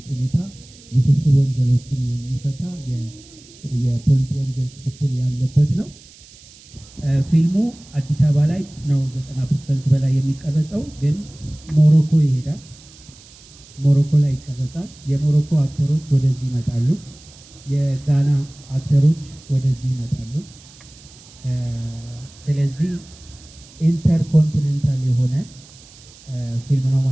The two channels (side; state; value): right; noise; hiss, 23 dB below the sound